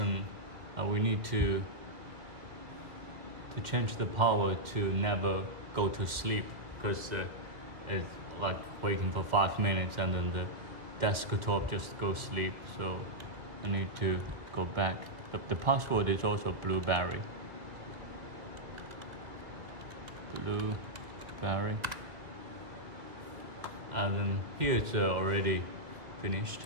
we need to change the power to never go to sleep, because it's like waiting for 5 minutes and then the desktop just goes sleep. So I need to go back. But the password is also blueberry. Blueberry. And then here it's already finished.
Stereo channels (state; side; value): late; left; 2.1 ms